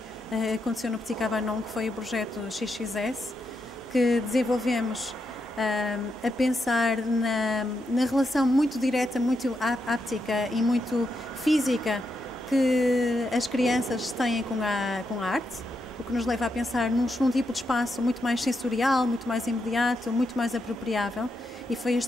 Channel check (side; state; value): both; normal; correlation 0.83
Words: aconteceu no Petit Cabanon, que foi o projeto XXS, que desenvolvemos a pensar na relação muito direta, muito áptica e muito física que as crianças têm com a arte, o que nos leva a pensar num tipo de espaço muito mais sensorial, muito mais imediato, muito mais apropriável, e foi